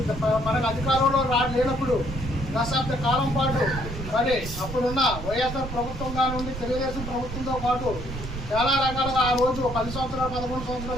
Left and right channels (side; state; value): right; noise; rumble, 8 dB below the sound